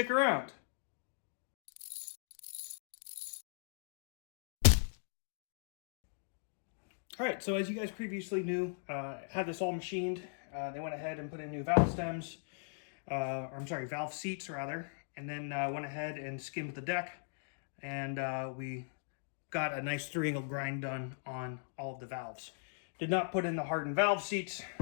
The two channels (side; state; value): right; silent; digital silence